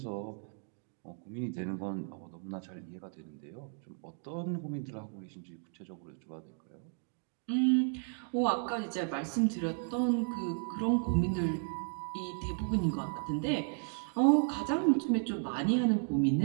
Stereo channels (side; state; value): left; silent; 55 dB below the other